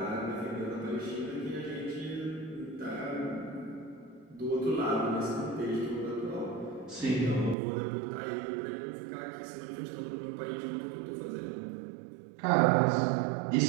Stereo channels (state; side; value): drops out; left; at 7.6 s